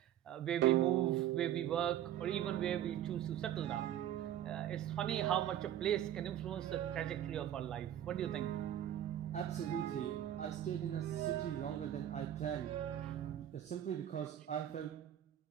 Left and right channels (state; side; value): quieter; left; 11.3 dB